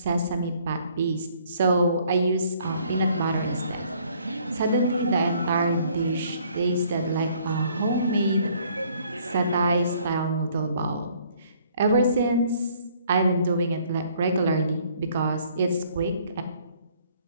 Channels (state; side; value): inverted; both; correlation -0.62